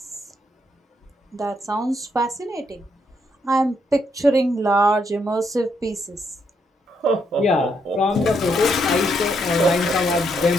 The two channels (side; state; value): both; normal; correlation 0.76